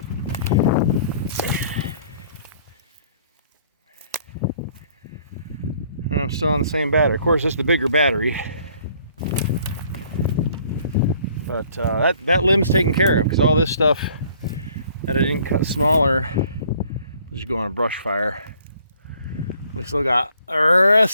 And I'm still on the same battery. Of course, this is the bigger battery. But that limb's taken care of because all this stuff that I didn't cut smaller was just going on a brush fire. We still got the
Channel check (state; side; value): inverted; both; correlation -0.59